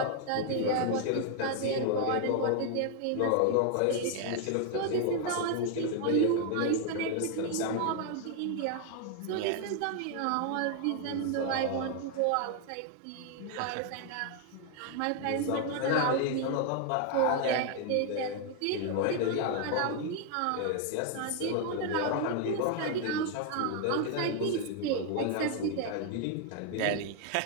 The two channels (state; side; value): different; both; correlation 0.00